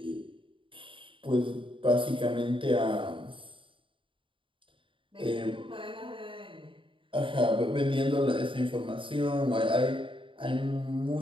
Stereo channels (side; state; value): left; late; 0.25 ms